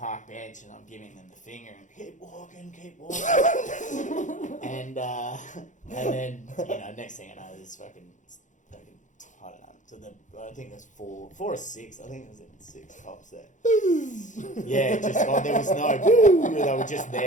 bench and I'm giving them the finger and keep walking. And then next thing I know, there's fucking I don't know. So I think there's 4 or 6. I think there was 6 cops there. Yeah, there was no. They were just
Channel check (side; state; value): right; late; 0.36 ms